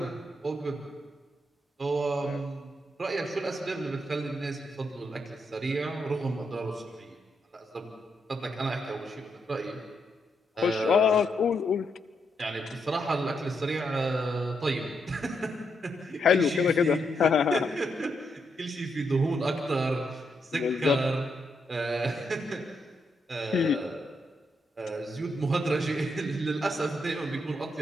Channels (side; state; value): both; normal; correlation 0.80